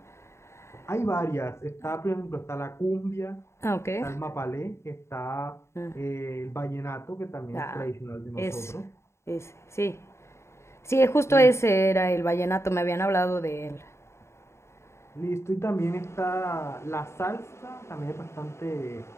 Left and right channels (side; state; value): right; late; 0.13 ms